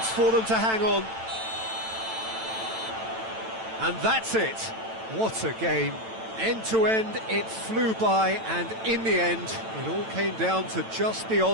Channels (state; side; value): late; left; 9.0 ms